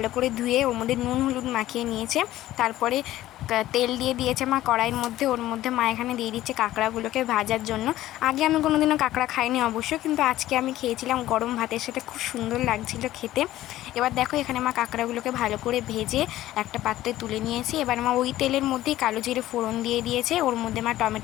করে ধুয়ে ওর মধ্যে নুন হলুদ মাখিয়ে নিয়েছে। তারপরে তেল দিয়ে দিয়েছে মা কড়াইয়ের মধ্যে। ওর মধ্যে মা এখানে দিয়ে দিচ্ছে কাঁকড়াগুলোকে ভাজার জন্য। আগে আমি কোনোদিনও কাঁকড়া খাইনি অবশ্য, কিন্তু আজকে আমি খেয়েছিলাম গরম ভাতের সাথে, খুব সুন্দর লাগছিল খেতে। এবার দেখো এখানে মা কাঁকড়াগুলোকে ভালো করে ভেজে একটা পাত্রে তুলে নিয়েছি। এবার মা ওই তেলের মধ্যেই কালো জিরে ফোড়ন দিয়ে দিয়েছে। ওর মধ্যে মা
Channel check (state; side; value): quieter; right; 14.8 dB